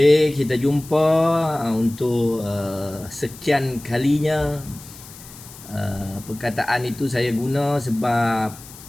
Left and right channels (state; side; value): noise; left; hiss, 18 dB below the sound